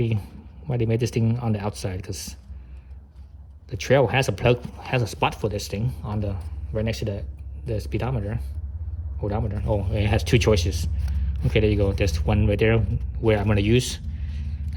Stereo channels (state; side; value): identical; both; correlation 1.00